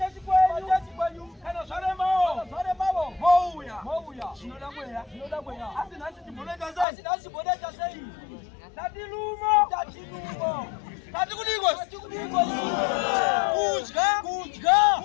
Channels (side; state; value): right; drops out; at 6.9 s